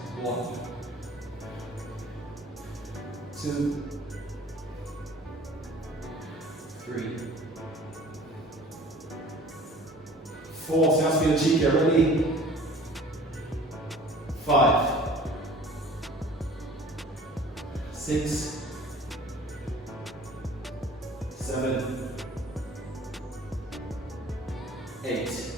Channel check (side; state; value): both; normal; correlation 0.48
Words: 1, 2, 3, 4. So that's for your cheek. Ready? 5, 6, 7, 8,